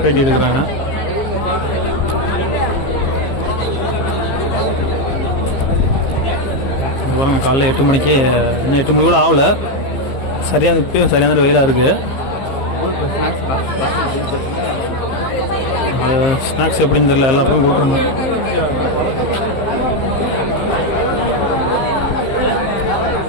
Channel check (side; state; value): right; late; 15 ms